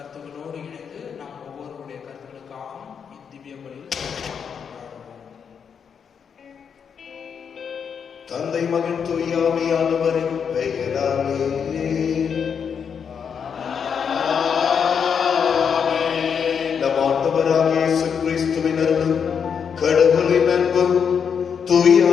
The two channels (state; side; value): quieter; right; 7.0 dB